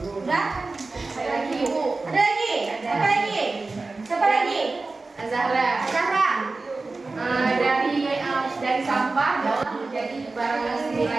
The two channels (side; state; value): left; quieter; 3.6 dB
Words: Udah? Ada lagi, Ibu. Ada lagi? Apa lagi? Siapa lagi? Azahra. Azahra. Dari sampah dapat menjadi barang yang